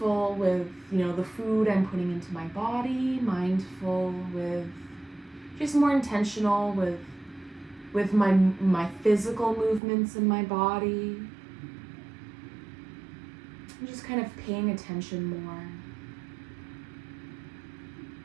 with, the food I'm putting into my body, mindful with, just more intentional with my physical movements in my body. I'm just kind of paying attention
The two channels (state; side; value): drops out; left; at 9.8 s